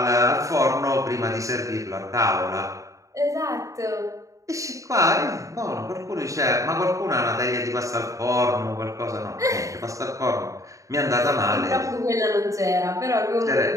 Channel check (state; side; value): late; left; 0.16 ms